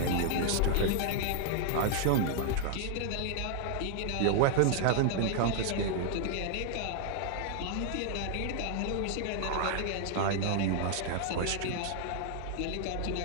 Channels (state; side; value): different; both; correlation 0.00